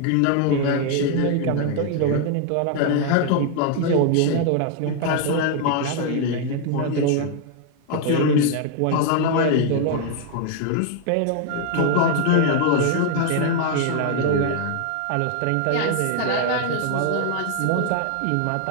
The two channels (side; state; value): both; different; correlation 0.00